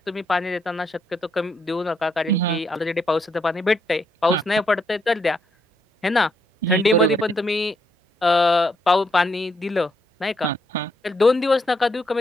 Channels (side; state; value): both; normal; correlation 0.76